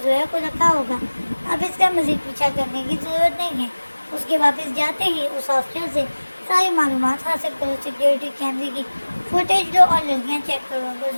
زویا کو رکھا ہوگا۔ اب اس کا مزید پیچھا کرنے کی ضرورت نہیں ہے۔ اس کے واپس جاتے ہی اس ہاسٹل سے ساری معلومات حاصل کرو، سیکیورٹی کیمرے کی فوٹیج لو اور لڑکیاں چیک کرو۔ اگر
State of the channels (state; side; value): inverted; both; correlation -1.00